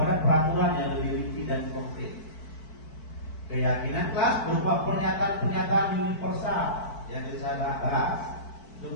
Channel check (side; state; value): right; late; 4.6 ms